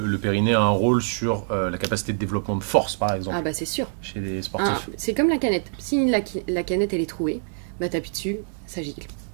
périnée a un rôle sur la capacité de développement de force, par exemple, Ah bah c'est sûr. chez les sportifs? C'est comme la canette. Si la canette elle est trouée, bah t'appuies dessus, ça gicle.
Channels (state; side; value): silent; left; 62 dB below the other